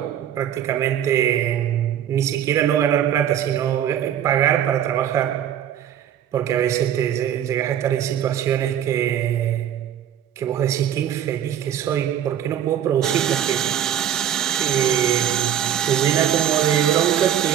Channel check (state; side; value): quieter; left; 10.2 dB